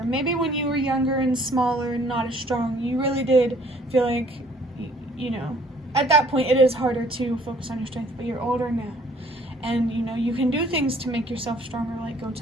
Maybe when you were younger and smaller and not as strong, you really did feel like, at that point it is harder to focus on your strength, but you're older now. And, you can do things to make yourself stronger, like go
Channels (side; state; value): both; normal; correlation 0.58